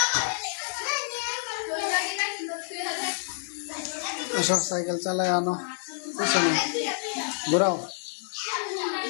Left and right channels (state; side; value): silent; right; digital silence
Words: সব সাইকেল চালায় আনো, পিছনে ঘোরাও।